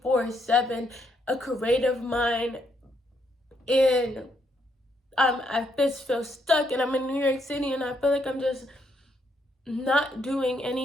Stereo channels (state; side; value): normal; both; correlation 0.75